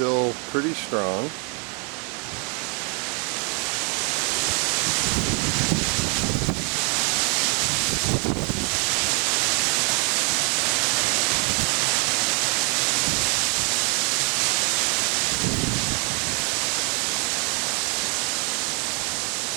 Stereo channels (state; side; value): quieter; left; 36.1 dB